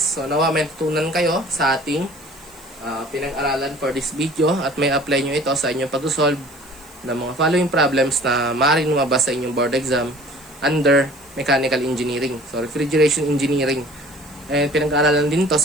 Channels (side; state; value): right; noise; hiss, 24 dB below the sound